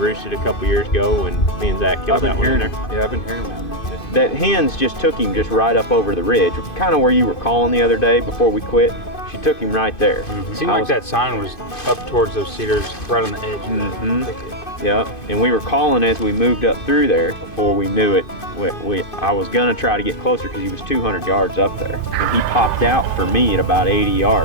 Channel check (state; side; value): late; right; 2.5 ms